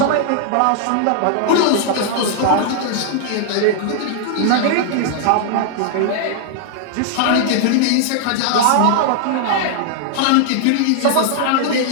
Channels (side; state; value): both; different; correlation -0.01